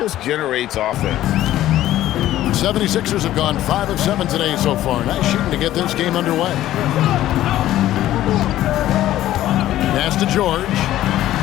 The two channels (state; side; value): quieter; right; 13.7 dB